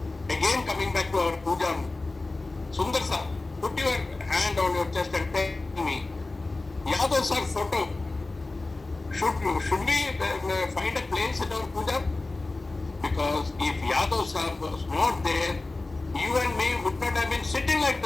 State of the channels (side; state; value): right; quieter; 3.2 dB